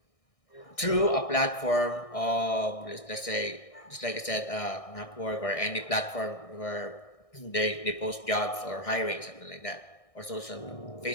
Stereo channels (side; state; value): right; late; 1.6 ms